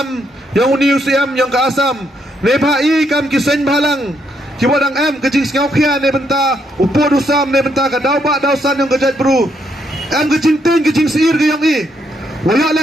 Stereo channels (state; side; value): normal; both; correlation 0.75